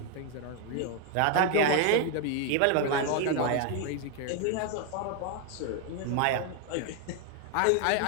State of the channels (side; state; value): both; different; correlation 0.01